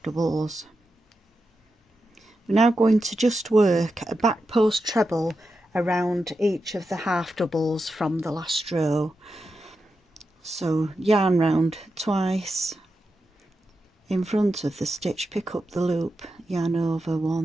doubles. We're now going to just work a back post treble around each of the half doubles from the last row. So yarn round twice, in front of the stitch pick up the loop, yarn over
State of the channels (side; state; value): both; normal; correlation 0.88